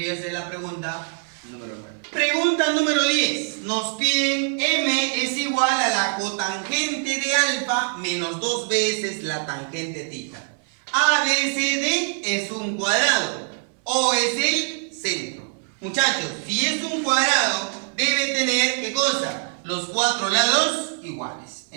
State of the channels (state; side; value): silent; left; 55 dB below the other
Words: a ser la pregunta número 9. Pregunta número 10. Nos piden M es igual a la cotangente de alfa menos 2 veces la tangente tita. ABCD es un cuadrado. O es el centro. Muchachos, si es un cuadrado, debe tener, ¿qué cosa? Los cuatro lados iguales.